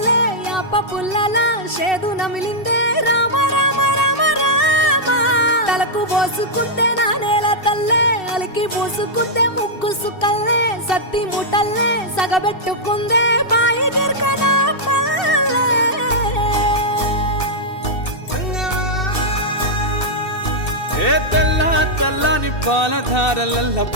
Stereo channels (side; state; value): right; late; 2.7 ms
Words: యాప పుల్లల షేదు నమిలిందే రామ రామ రామ రామ తలకు పోసుకుందే నా నేల తల్లే అలికి పూసుకుందే ముగ్గు సుక్కల్లే సత్తి ముటల్లే సగబెట్టుకుందే బాయి గిర్కన పల్లె ఏ తెల్ల తెల్లని పాలధారలల్ల